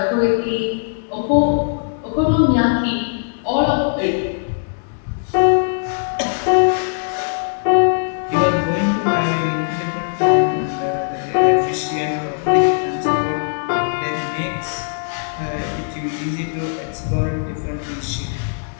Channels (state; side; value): silent; right; digital silence